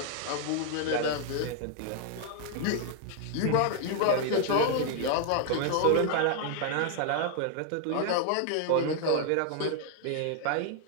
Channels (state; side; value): different; both; correlation 0.00